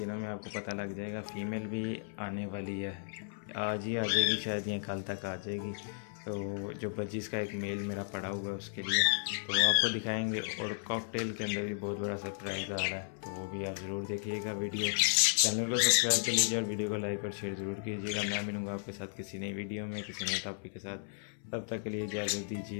में आपको पता लग जाएगा। फीमेल भी आने वाली है, आज ही आ जाएगी शायद या कल तक आ जाएगी। तो जो बजीज का एक मेल मेरा पड़ा हुआ है उसके लिए तो आपको दिखाएंगे। और कॉकटेल के अंदर भी बहुत बड़ा सरप्राइज़ आ रहा है, तो वो भी आप ज़रूर देखिएगा वीडियो। चैनल को सब्सक्राइब कर लीजिए और वीडियो को लाइक और शेयर ज़रूर कीजिएगा। मैं मिलूँगा आपके साथ किसी नई वीडियो में किसी नए टॉपिक के साथ। तब तक के लिए इजाज़त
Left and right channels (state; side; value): silent; right; 55 dB below the other